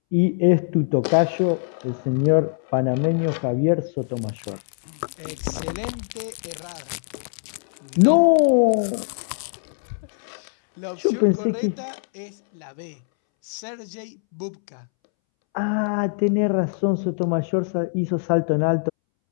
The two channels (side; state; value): right; silent; 63 dB below the other